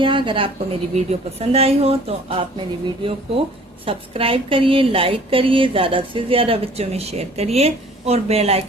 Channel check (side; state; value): both; normal; correlation 0.52